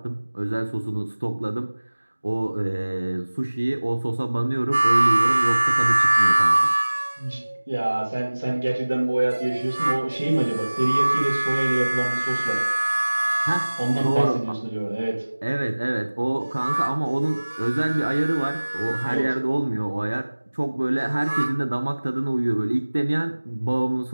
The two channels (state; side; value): inverted; both; correlation -1.00